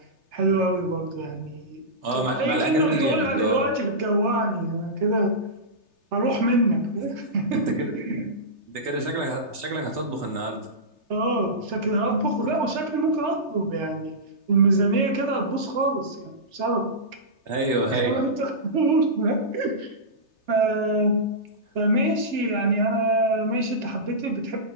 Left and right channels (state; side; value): late; left; 3.3 ms